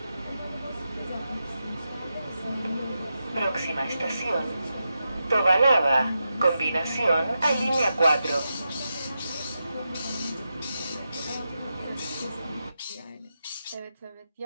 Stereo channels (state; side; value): inverted; both; correlation -0.88